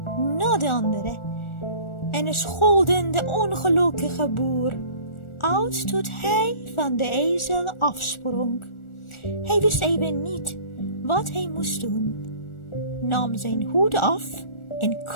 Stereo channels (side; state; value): right; late; 1.4 ms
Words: na de andere en scholden de ongelukkige boer uit tot hij van de ezel afsprong. Hij wist even niet wat hij moest doen, nam zijn hoed af en